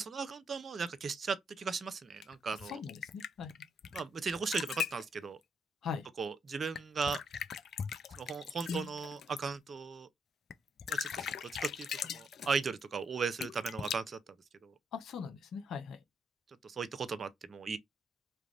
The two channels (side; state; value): both; normal; correlation 0.75